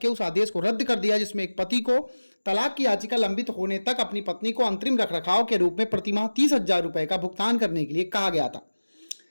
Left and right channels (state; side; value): inverted; both; correlation -1.00